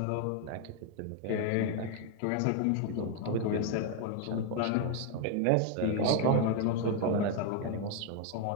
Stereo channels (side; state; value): both; different; correlation 0.01